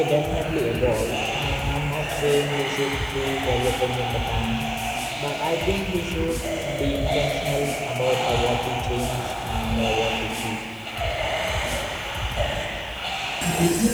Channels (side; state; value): both; identical; correlation 1.00